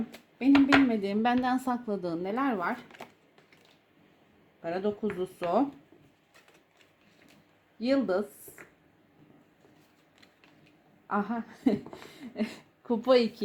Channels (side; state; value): both; identical; correlation 1.00